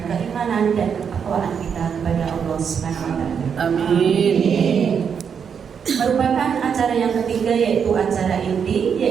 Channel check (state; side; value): quieter; left; 7.1 dB